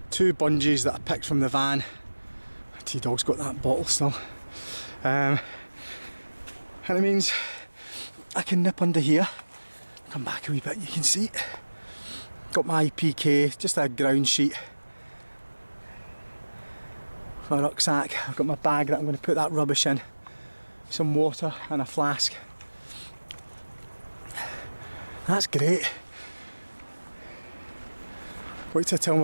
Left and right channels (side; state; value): both; inverted; correlation -1.00